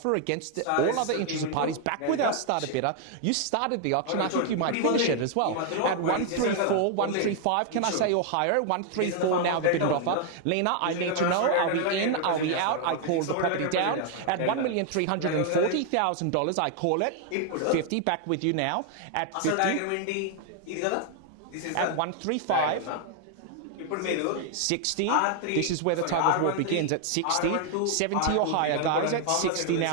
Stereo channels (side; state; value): both; different; correlation 0.00